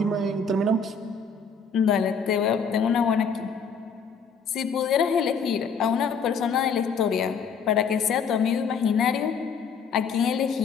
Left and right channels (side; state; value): right; quieter; 5.5 dB